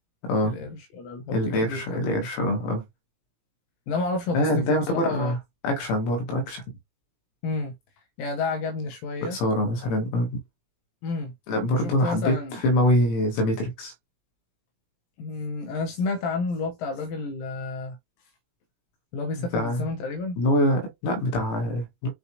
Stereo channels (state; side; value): late; right; 17 ms